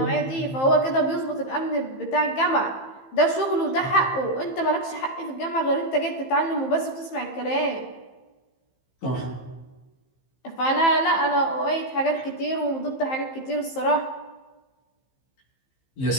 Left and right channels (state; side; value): late; right; 15 ms